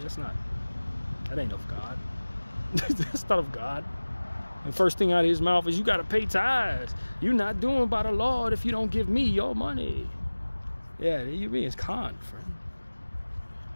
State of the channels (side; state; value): both; inverted; correlation -1.00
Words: ain't of God. That's not of God. And first thing out of his mouth is, you got to pay tithes. You're not doing by the Lord if you don't give me your money. Yeah, you being con, friend.